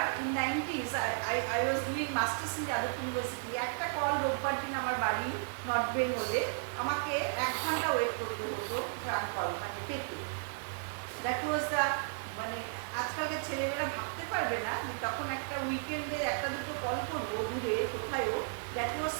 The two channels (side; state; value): left; silent; 55 dB below the other